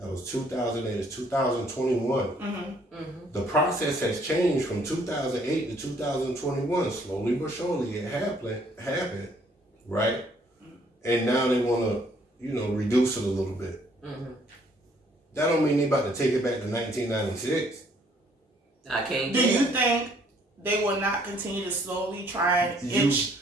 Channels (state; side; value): normal; both; correlation 0.64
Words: was 2008. It's 2021. The process has changed from 2008 to 2021. Slowly but surely, it happened, right? And now they want to, reduce it a little bit. That don't mean they about to take it back to 1996. I can't. Do you think they will not continue to slowly try and inch